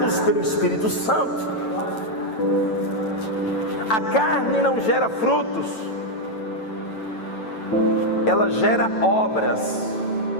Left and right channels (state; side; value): late; right; 9.0 ms